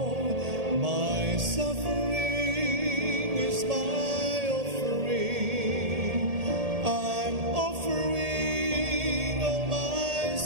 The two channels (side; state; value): left; late; 1.8 ms